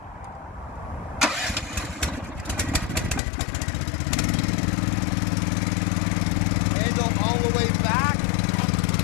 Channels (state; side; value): drops out; right; at 3.2 s